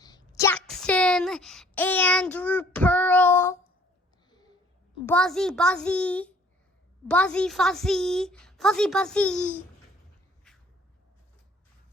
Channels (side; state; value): both; normal; correlation 0.57